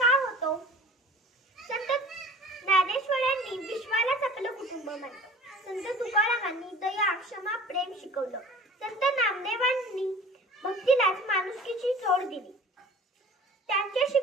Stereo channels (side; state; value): both; normal; correlation 0.44